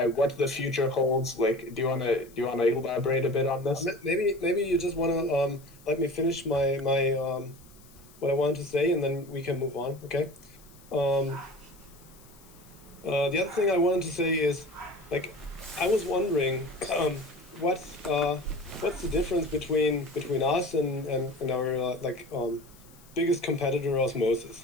what the future holds? Like, do you want to elaborate a bit on this? Maybe you just want to let me finish my what I wanted to say, and then we can move on. Okay. The other thing I wanted to say is, like, I was wondering what's the difference between us and our biggest competitor, Osmosis.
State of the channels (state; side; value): noise; left; hiss, 25 dB below the sound